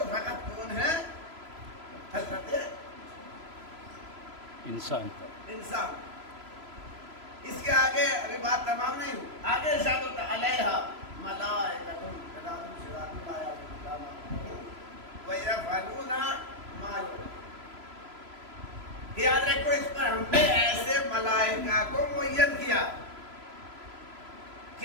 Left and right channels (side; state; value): left; late; 3.0 ms